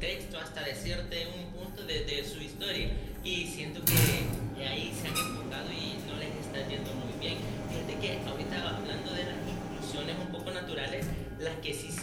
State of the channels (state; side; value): identical; both; correlation 1.00